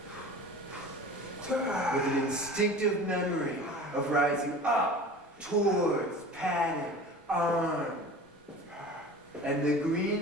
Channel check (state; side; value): normal; both; correlation 0.39